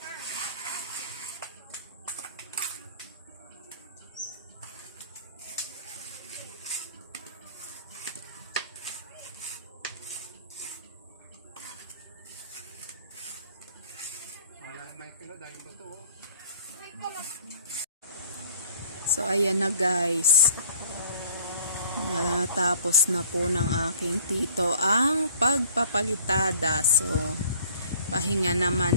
Wala nang mic na dahil ba ito? So ayan na guys, natapos na po ng aking tito ang pagpapalitada. So pahinga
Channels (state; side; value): inverted; both; correlation -0.54